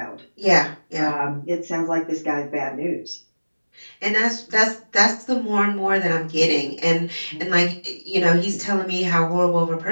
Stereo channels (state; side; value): inverted; both; correlation -1.00